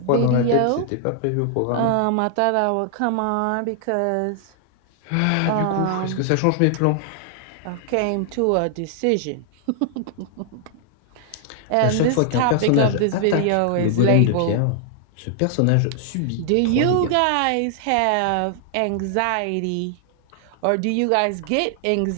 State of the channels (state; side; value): different; both; correlation 0.00